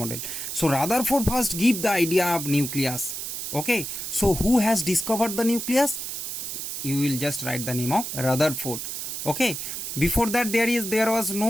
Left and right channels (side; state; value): right; noise; hiss, 5 dB below the sound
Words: So Rutherford first give the idea of nucleus. Okay. So who has discovered the nucleus? You will just write the name of Rutherford. Okay. Before that there was